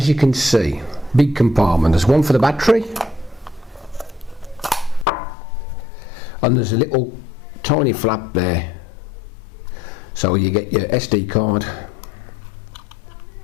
you can see, big compartment. There's one for the battery, and there's a little tiny flap there. So you get your SD card.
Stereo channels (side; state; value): right; drops out; at 5.1 s